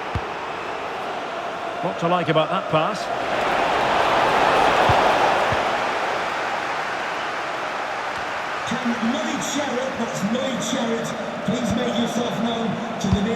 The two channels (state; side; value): identical; both; correlation 1.00